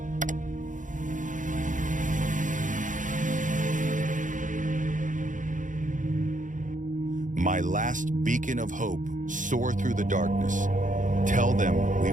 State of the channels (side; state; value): left; late; 0.37 ms